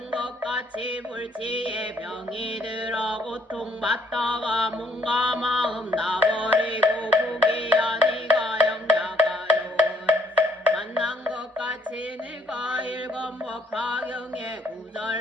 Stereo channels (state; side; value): normal; both; correlation 0.66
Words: 것 같이 불치에 병이 들어 고통받다가 몸과 마음 나버리고 부기야 네가 영야가요 만난 것 같이 내가 읽은 법화경의